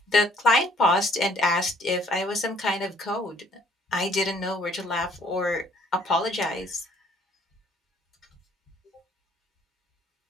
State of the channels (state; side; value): normal; both; correlation 0.62